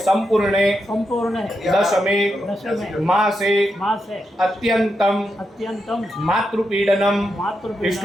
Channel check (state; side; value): normal; both; correlation 0.85